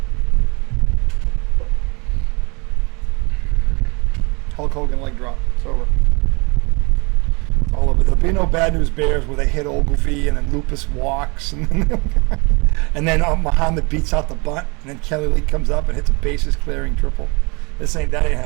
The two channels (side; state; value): left; quieter; 29.3 dB